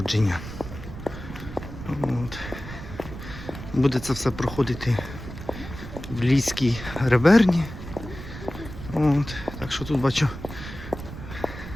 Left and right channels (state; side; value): noise; right; rumble, 11 dB below the sound